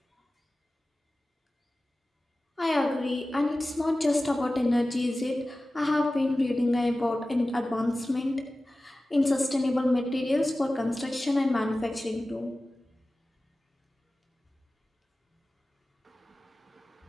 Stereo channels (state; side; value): normal; both; correlation 0.96